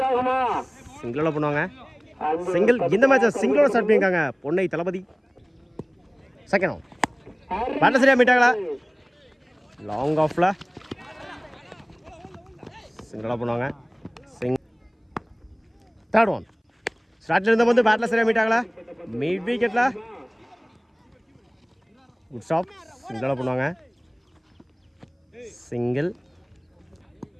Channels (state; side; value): identical; both; correlation 1.00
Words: சிங்கிளோட பண்ணுவாங்க. சிங்கிள் இந்த மேட்சை சிங்கிளோட ஸ்டார்ட் பண்ணியிருக்காங்க பொன்னை தளபதி. செகண்ட் ஆஃப் பேட்டர் சரியாக மீட்டாங்களா லாங் ஆஃபில் சிங்கிளோட பண்ணுவாங்க. தேர்ட் ஒன் ஸ்டார்ட்ல இருந்த வந்து பேட்டில் சரியாக மீட்டாங்களா மிட் விக்கெட்டில் குட் ஸ்டாப் சிங்கிளோட பண்ணுவாங்க. Single